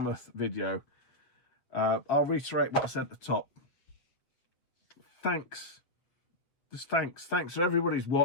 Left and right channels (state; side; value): late; right; 7.6 ms